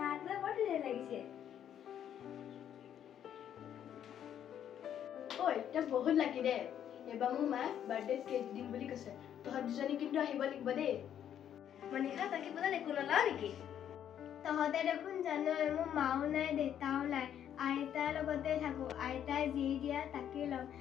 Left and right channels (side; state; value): right; quieter; 9.8 dB